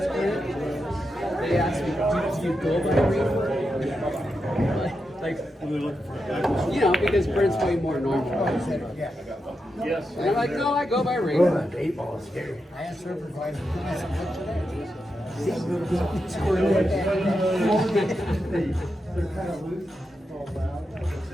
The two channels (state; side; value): normal; both; correlation 0.87